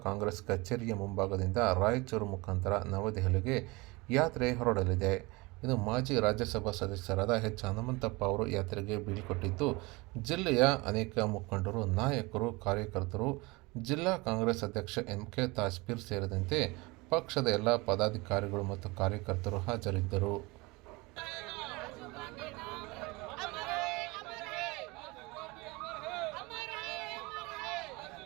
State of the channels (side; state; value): left; quieter; 24.4 dB